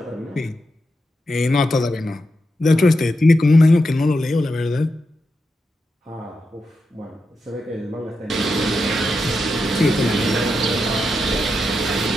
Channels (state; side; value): normal; both; correlation 0.87